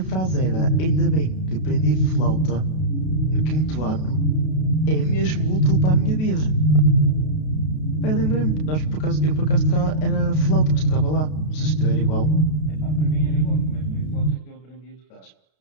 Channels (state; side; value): late; right; 32 ms